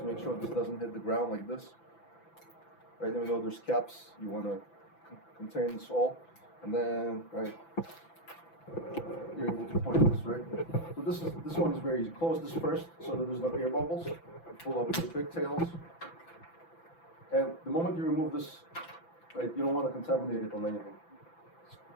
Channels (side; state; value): right; late; 6.0 ms